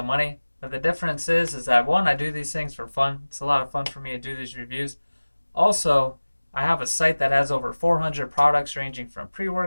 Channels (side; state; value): both; inverted; correlation -1.00